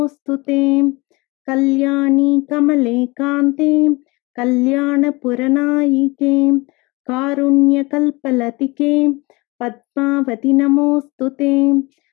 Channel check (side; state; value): right; quieter; 24.3 dB